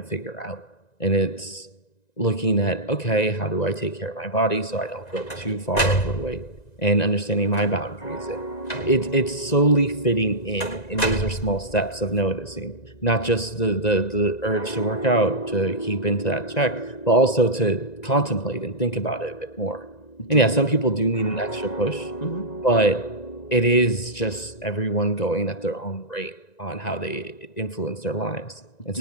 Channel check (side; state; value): right; late; 1.9 ms